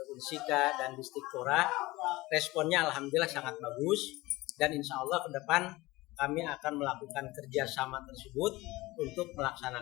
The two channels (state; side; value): quieter; right; 20.1 dB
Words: Unsika dan Distikpora. Responnya alhamdulillah sangat bagus dan insya Allah ke depan kami akan melakukan kerjasama tersebut untuk